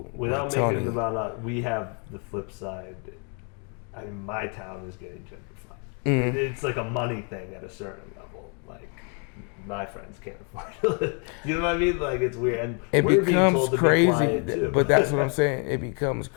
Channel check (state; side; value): quieter; right; 38.7 dB